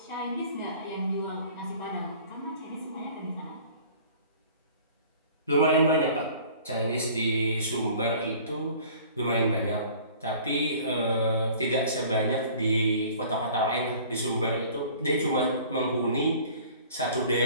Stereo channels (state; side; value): inverted; both; correlation -0.48